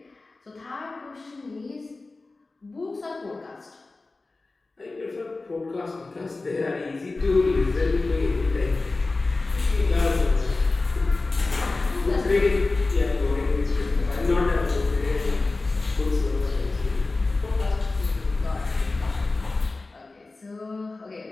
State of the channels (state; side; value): quieter; right; 3.4 dB